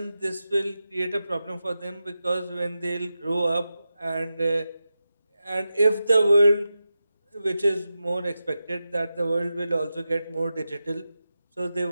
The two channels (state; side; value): inverted; both; correlation -0.91